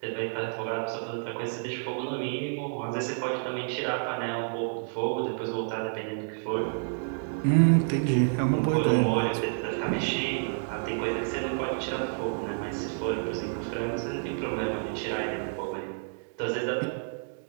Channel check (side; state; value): left; silent; 58 dB below the other